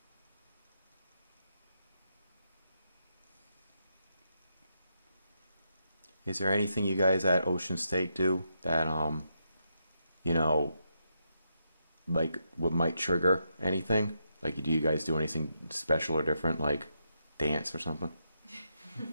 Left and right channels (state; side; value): inverted; both; correlation -0.82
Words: Is there anything you guys at Ocean State do that, you know, like what might trigger anything? Like, do you guys do anything special or different, like dance or something?